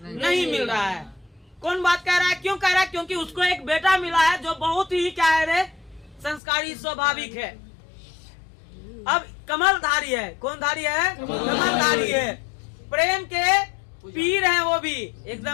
नहीं मिल रहा है। कौन बात कह रहा है? क्यों कह रहा है? क्योंकि उसको एक बेटा मिला है जो बहुत ही क्या है रे, संस्कारी स्वाभाविक है। अब कमलधारी है। कौन धारी है? कमलधारी है। प्रेम के पीर हैं वो भी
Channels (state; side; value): drops out; right; at 6.4 s